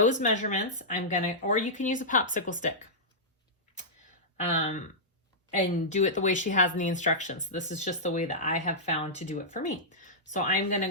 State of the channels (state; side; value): normal; both; correlation -0.13